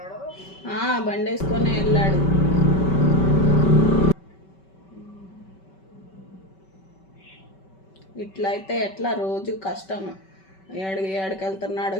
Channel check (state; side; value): late; right; 5.2 ms